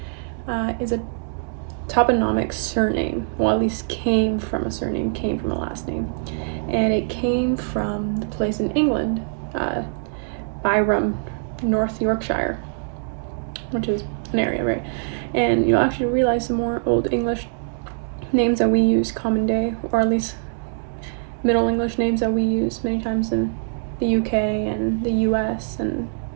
is a toponymic surname. Well, at least came from a surname, came from a last name. And it came from the place in England, Byron, North Yorkshire, which is an area, right? And you'll actually realize some more Old English names that we use common day, or at least Middle English names that we use many times in the UK and the US and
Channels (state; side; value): silent; left; digital silence